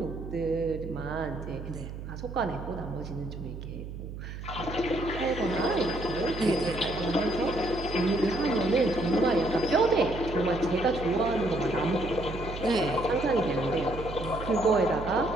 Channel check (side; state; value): right; noise; hum, 9 dB below the sound